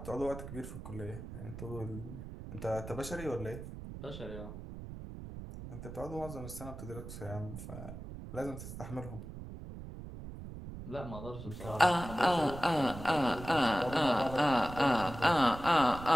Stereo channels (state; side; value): noise; right; rumble, 10 dB below the sound